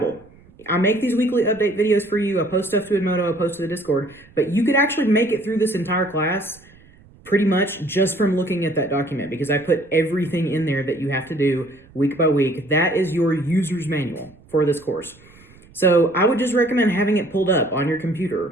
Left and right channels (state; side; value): noise; right; rumble, 26 dB below the sound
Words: I make these weekly update videos for you. I post stuff to Edmodo, I post to the Discord, but you could actually make it through this entire class pretty much just from looking at that document, because I put everything in there that you have to do week by week. That is your user's manual for this course. So I would just recommend having it pulled up on your